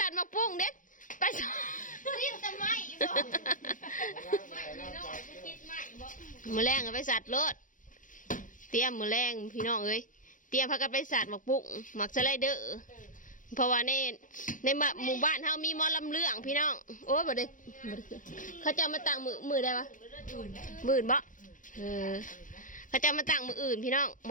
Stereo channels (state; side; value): late; right; 0.38 ms